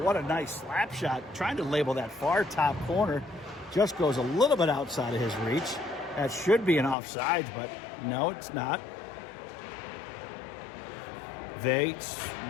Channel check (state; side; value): drops out; right; at 7.0 s